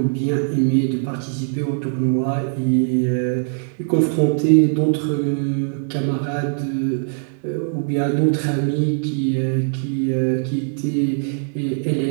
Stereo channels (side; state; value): left; silent; digital silence